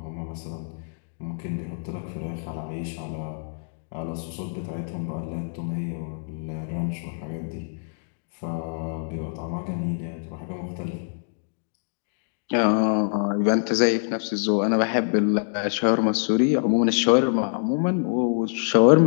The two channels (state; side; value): silent; right; digital silence